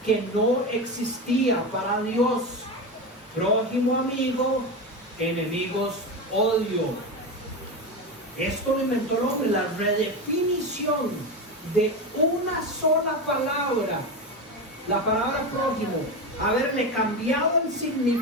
que no existía para Dios. Prójimo, amigo; enemigos, odio. Esto lo inventó el hombre, la redefinición de una sola palabra, la palabra prójimo. Haberle cambiado el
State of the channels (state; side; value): normal; both; correlation 0.19